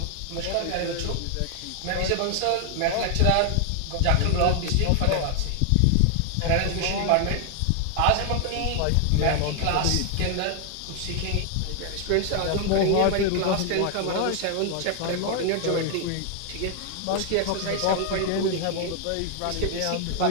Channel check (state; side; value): different; both; correlation 0.00